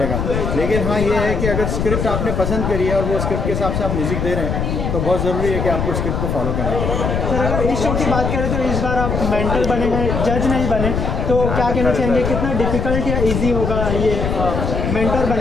लेकिन हाँ ये है कि अगर स्क्रिप्ट आपने पसंद करी है और वो स्क्रिप्ट के हिसाब से आप म्यूज़िक दे रहे हैं तो बहुत ज़रूरी है कि आपको स्क्रिप्ट को फॉलो करना पड़ेगा। सर अगर इस शो की बात करें तो इस बार आप मेंटर बने हैं, जज नहीं बने, तो क्या कहना चाहेंगे, कितना डिफ़िकल्ट या ईजी होगा ये मेंटर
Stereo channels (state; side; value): noise; left; rumble, 1 dB below the sound